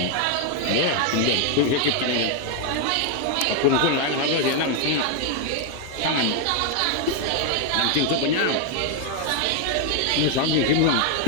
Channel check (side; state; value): both; different; correlation 0.00